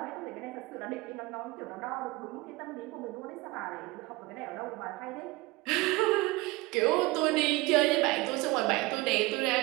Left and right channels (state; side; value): quieter; left; 22.4 dB